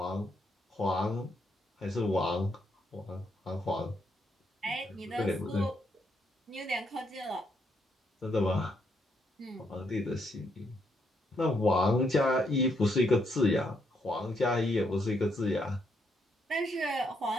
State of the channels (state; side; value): normal; both; correlation 0.75